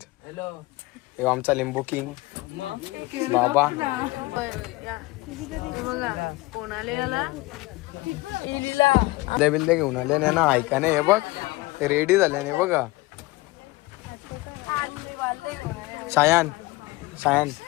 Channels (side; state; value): right; quieter; 20.9 dB